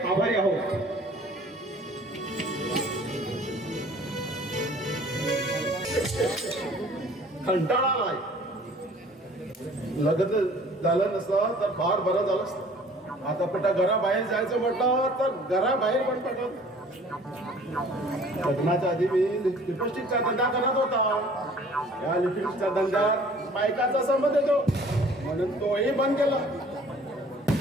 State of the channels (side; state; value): both; normal; correlation 0.51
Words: आभारी आहोत. कंटाळा नाही. लग्न झालं नसतं तर फार बरं झालं असतं. आता कुठं घराबाहेर जायचं म्हटलं तर घराबाहेर पण पडत. लग्नाच्या आधी मी लिपस्टिकचा धंदा करत होता. या लिपस्टिकच्या धंद्यात बायकाचा संबंध येतो म्हणून तोही बंद केला.